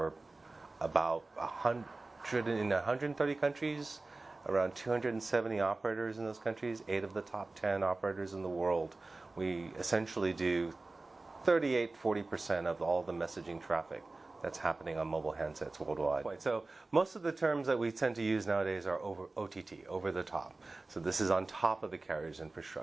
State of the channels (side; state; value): left; quieter; 3.3 dB